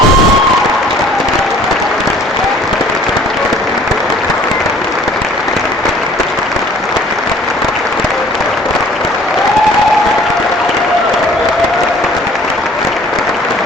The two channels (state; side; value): normal; both; correlation 0.53